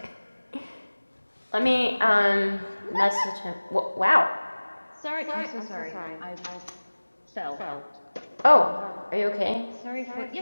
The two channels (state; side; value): inverted; both; correlation -1.00